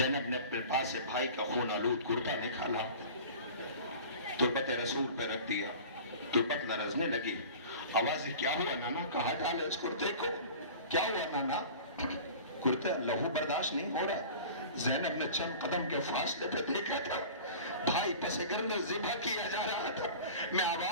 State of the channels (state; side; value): inverted; both; correlation -0.39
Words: نے اپنے پاس سے بھائی کا خون آلود کرتا نکالا, تربت رسول پہ رکھ دیا, تربت لرزنے لگی. آوازیں کیا ہوا نانا, کہاں ڈالے اس کرتے کو, کیا ہوا نانا؟ کرتے لہو برداشت نہیں ہو رہا. زینب نے چند قدم کے فاصلے پہ دیکھا تھا, بھائی پس گردن ذبح کیا جا رہا تھا. میں